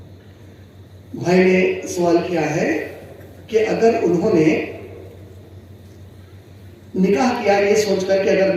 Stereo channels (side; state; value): both; identical; correlation 1.00